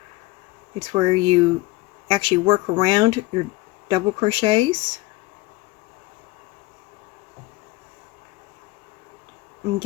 It's where you actually work around your double crochets and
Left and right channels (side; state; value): right; quieter; 20.9 dB